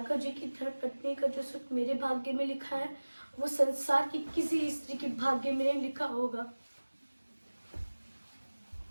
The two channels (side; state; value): both; inverted; correlation -1.00